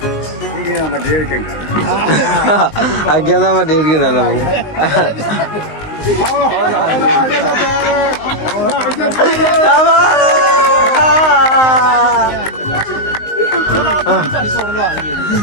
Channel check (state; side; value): late; right; 19 ms